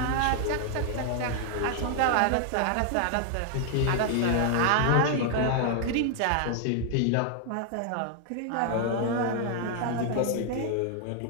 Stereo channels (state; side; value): different; both; correlation 0.00